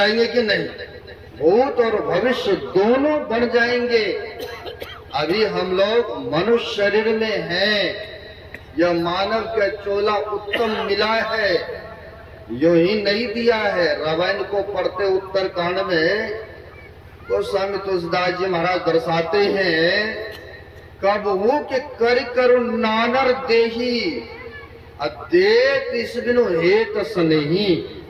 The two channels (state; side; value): identical; both; correlation 1.00